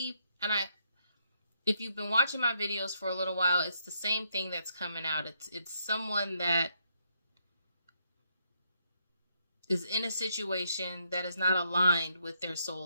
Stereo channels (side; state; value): both; inverted; correlation -0.76